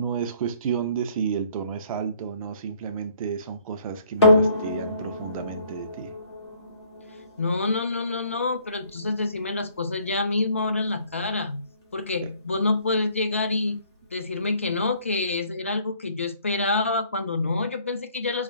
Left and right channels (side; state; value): both; inverted; correlation -0.61